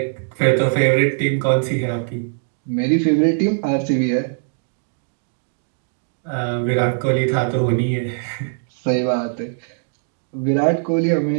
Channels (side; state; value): left; silent; digital silence